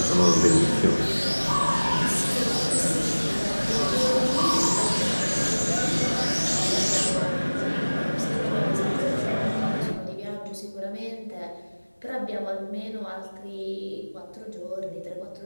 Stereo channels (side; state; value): both; inverted; correlation -1.00